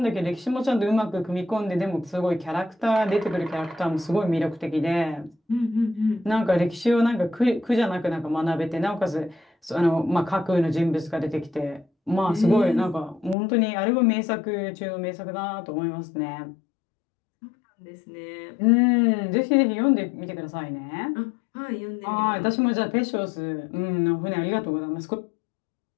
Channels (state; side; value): drops out; right; at 13.4 s